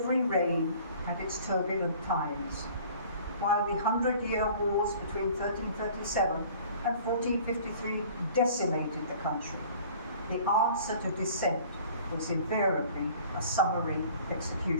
reign had its turbulent times. While the 100-Year Wars between 1337 and 1453 decimated the country, the answer to dissent was invariably a summary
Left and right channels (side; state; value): both; inverted; correlation -0.49